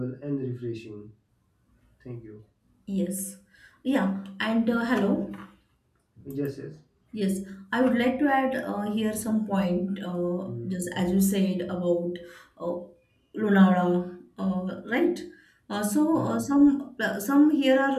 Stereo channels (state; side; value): identical; both; correlation 1.00